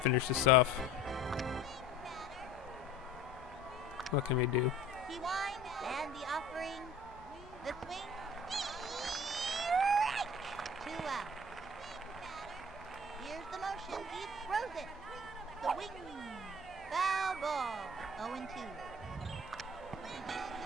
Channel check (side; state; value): both; normal; correlation 0.45